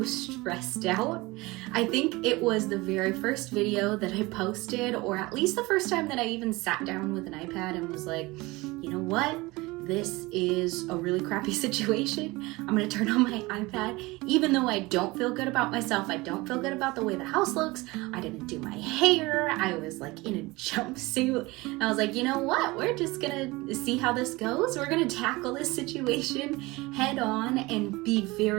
stressed out. I think it was the very first video that I posted, or at least the first time that I even sat down with an iPad and was like, you know what? This is a really crappy situation. I'm gonna turn on my iPad. Even though I don't feel good about myself, I don't feel good about the way the house looks, I didn't do my hair, I was like in a jumpsuit. I was like, you know what? We're just gonna see how this goes. We're gonna tackle this situation head on and be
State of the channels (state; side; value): quieter; left; 22.2 dB